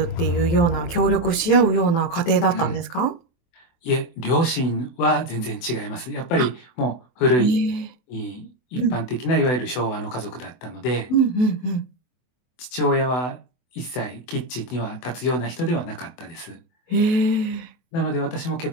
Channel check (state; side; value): late; right; 24 ms